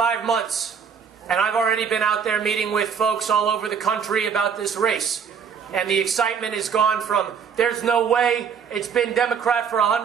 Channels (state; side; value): quieter; left; 6.8 dB